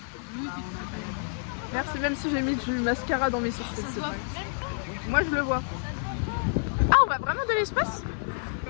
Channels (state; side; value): silent; right; 59 dB below the other